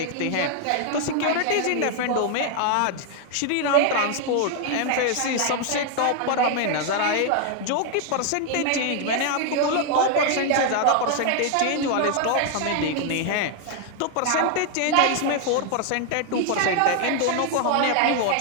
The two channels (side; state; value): both; different; correlation 0.00